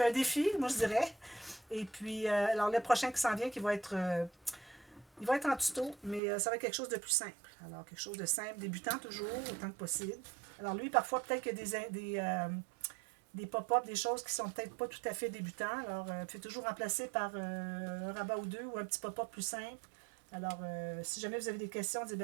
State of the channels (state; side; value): drops out; left; at 6.2 s